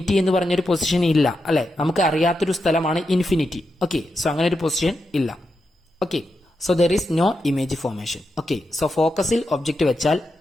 എന്ന് പറഞ്ഞൊരു പൊസിഷൻ ഇല്ല, അല്ലെ? നമുക്ക് അറിയാത്തൊരു സ്ഥലമാണ് ഇൻഫിനിറ്റി. ഓക്കെ, സോ അങ്ങനെ ഒരു പൊസിഷൻ ഇല്ല. Okay, so there is no image formation. Okay, so ഫോക്കസിൽ ഒബ്ജക്റ്റ് വെച്ചാൽ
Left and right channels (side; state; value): both; normal; correlation 0.87